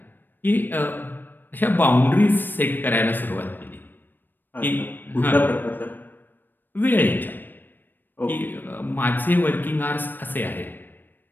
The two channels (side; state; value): right; late; 0.092 ms